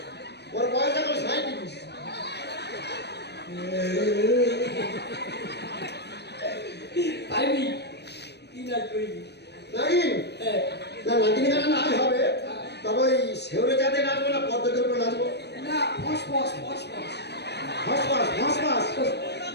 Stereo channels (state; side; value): late; right; 0.49 ms